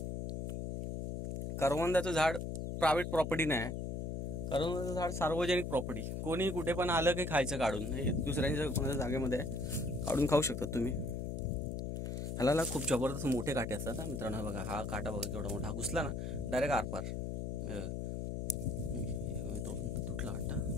करवंदाचं झाड प्रायव्हेट प्रॉपर्टी नाही, करवंदाचं झाड सार्वजनिक प्रॉपर्टी. कोणी कुठे पण आलं की खायचं काढून, हे दुसऱ्यांच्या कोणाच्या जागेमध्ये आहे, काढून खाऊ शकतात तुम्ही. ह्याला खूप जबरदस्त मोठे काटे असतात ना मित्रांनो. बघा हा काटा बघा केवढा मोठा, हा घुसला ना डायरेक्ट आरपार. तोडून तुटला वाटतं.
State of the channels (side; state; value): left; noise; hum, 3 dB below the sound